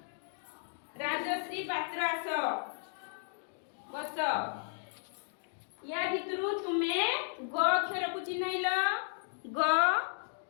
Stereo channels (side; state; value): right; silent; digital silence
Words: आस बस या भितरु तुमे ग अक्षर को चिन्हैल ग